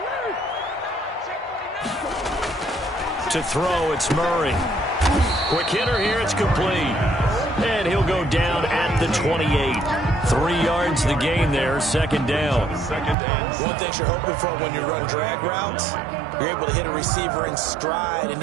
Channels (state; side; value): drops out; left; at 13.2 s